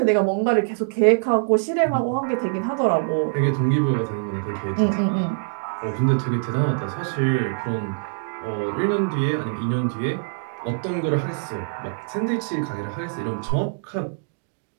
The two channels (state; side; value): silent; left; digital silence